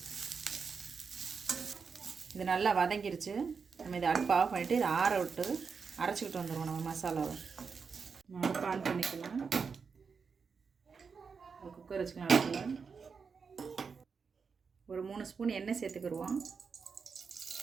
இது நல்லா வதங்கிருச்சு. நம்ம இதை அடுப்பு ஆஃப் பண்ணிவிட்டு இதை ஆற விட்டு அரைச்சிக்கிட்டு வந்துடுவோம். நம்ம மசாலாவை நம்ம அடுப்பு ஆன் பண்ணிக்கலாம். குக்கர் வச்சுக்கலாம். அடுப்பில் ஒரு 3 ஸ்பூன் எண்ணெய் சேர்த்துக்கிடுவோம்.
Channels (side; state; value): left; quieter; 5.5 dB